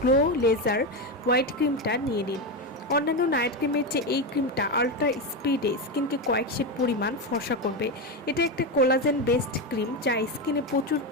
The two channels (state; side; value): normal; both; correlation 0.13